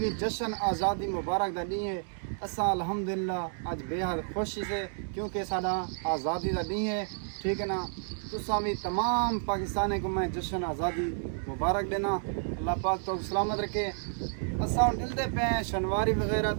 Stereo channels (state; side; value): silent; left; digital silence